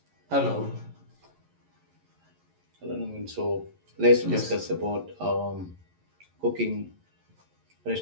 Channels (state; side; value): late; left; 11 ms